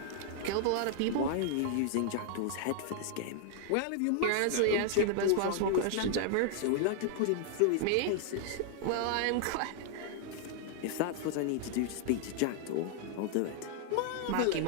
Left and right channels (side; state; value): both; different; correlation 0.00